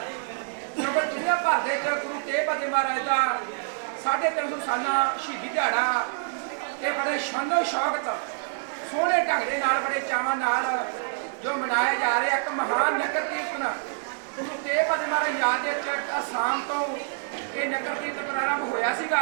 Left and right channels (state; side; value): silent; left; digital silence